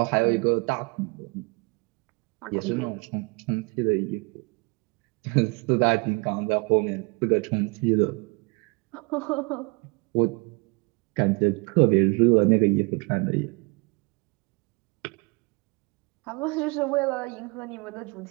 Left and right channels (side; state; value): left; quieter; 29.7 dB